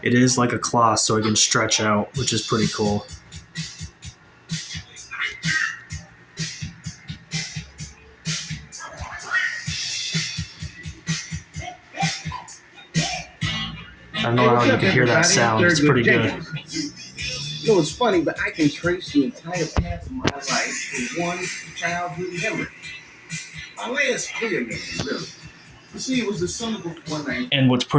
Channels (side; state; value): both; identical; correlation 1.00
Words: is like a cloth, so it can stretch out, which is pretty cool. I don't know how you can hear that sound. It's pretty good. You know, it's funny, but I can trace the entire path of my life to one childhood memory. My last clear memory, really. You see, it was the summer before 19. And what's